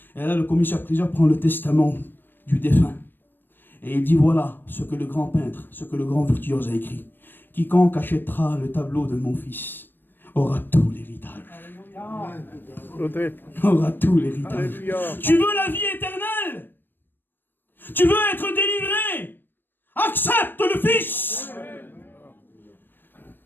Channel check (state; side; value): late; right; 0.095 ms